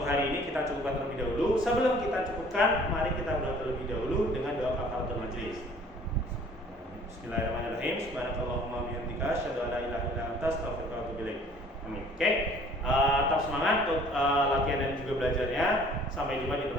hari ini kita cukupkan terlebih dahulu. Sebelum kita cukupkan, mari kita berdoa terlebih dahulu dengan doa kafaratul majelis. Bismillahirrahmanirrahim. Subhanakallahumma wa bihamdika asyhadu an la ilaha illa anta astaghfiruka wa atubu ilaik. Amin. Oke. Tetap semangat untuk latihan dan juga belajarnya. Sampai jumpa di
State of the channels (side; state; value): both; normal; correlation 0.53